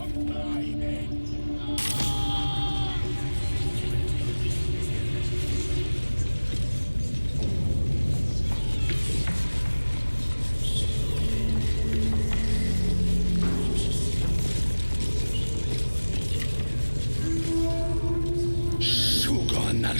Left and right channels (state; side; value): inverted; both; correlation -1.00